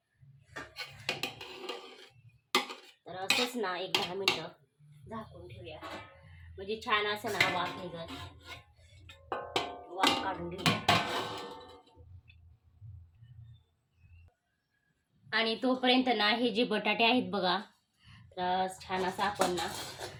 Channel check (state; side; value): identical; both; correlation 1.00